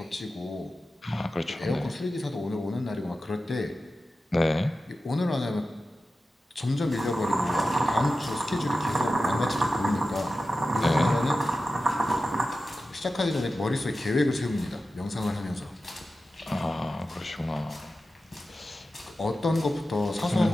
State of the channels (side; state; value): both; normal; correlation 0.93